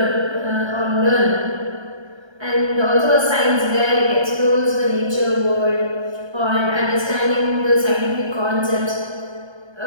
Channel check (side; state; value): left; late; 1.3 ms